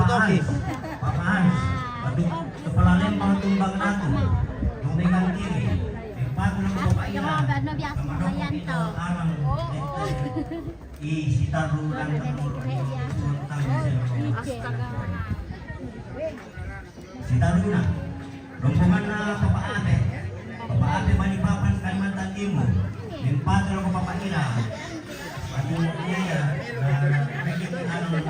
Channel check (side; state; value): both; identical; correlation 1.00